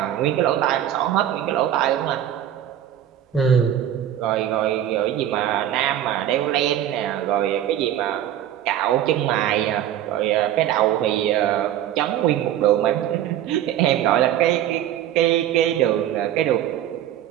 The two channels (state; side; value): quieter; left; 11.2 dB